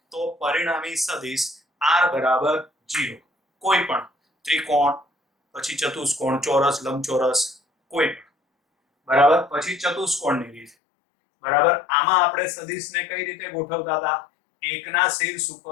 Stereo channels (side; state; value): right; drops out; at 10.7 s